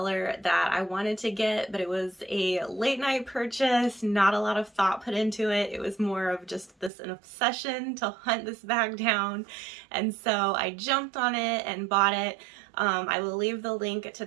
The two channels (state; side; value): drops out; left; at 6.9 s